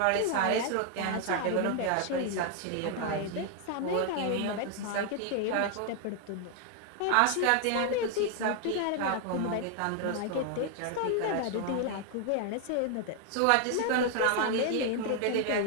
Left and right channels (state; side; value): different; both; correlation 0.00